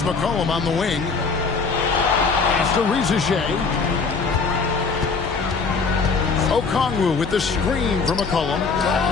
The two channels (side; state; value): right; quieter; 4.8 dB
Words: McCollum on the wing. Pass to Rizichet. Okongwu with the screen from McCollum.